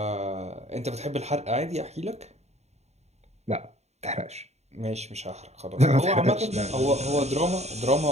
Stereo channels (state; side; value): late; left; 0.32 ms